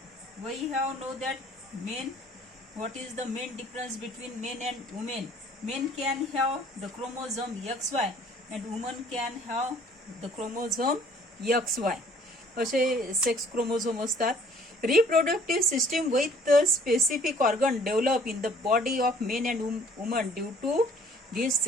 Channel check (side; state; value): both; normal; correlation 0.56